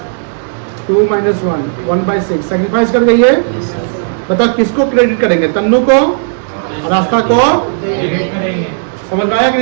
2 माइनस 1 1/6 सैक्रिफाइस कर गई है। बताओ किसको क्रेडिट करेंगे? तन्नू को और आस्था को। समझ में आया कि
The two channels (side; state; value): left; silent; 73 dB below the other